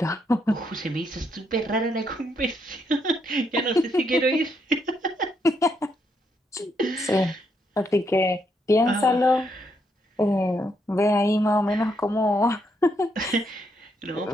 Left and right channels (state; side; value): normal; both; correlation 0.76